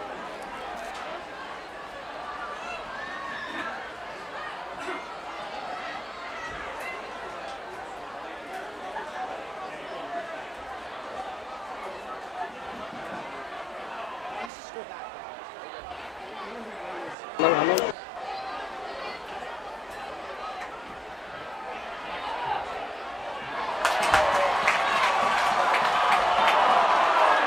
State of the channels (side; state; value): both; normal; correlation 0.89